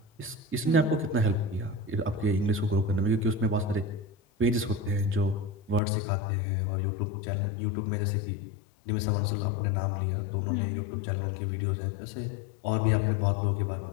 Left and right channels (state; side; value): drops out; right; at 5.8 s